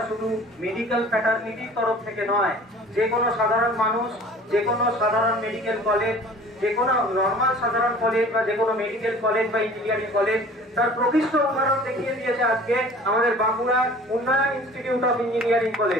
শুধু মেডিকেল ফ্যাটার্নিটির তরফ থেকে নয়, যে কোনো সাধারণ মানুষ, যে কোনো সাধারণ মেডিকেল কলেজ, যে কোনো নর্মাল সাধারণ কলেজ বা যে কোনো মেডিকেল কলেজ বা ইঞ্জিনিয়ারিং কলেজ তার প্রকৃষ্ট উদাহরণ দেখিয়ে দিয়েছে আজকে আমাদের বাঁকুড়ার উন্নয়ন ইনস্টিটিউট অফ ইঞ্জিনিয়ারিং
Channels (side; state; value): both; normal; correlation 0.46